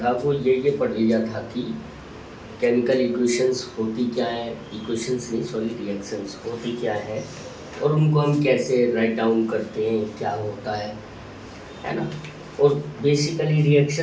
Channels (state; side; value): identical; both; correlation 1.00